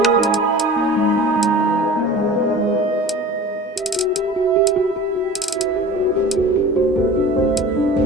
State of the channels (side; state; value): both; normal; correlation 0.40